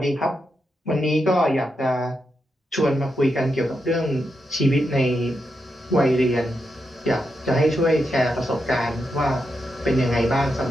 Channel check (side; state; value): both; normal; correlation 0.85